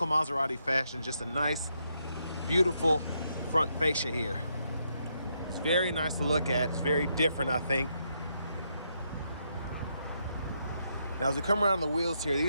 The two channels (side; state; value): both; inverted; correlation -0.78